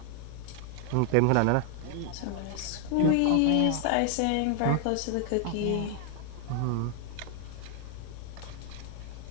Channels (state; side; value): different; both; correlation 0.00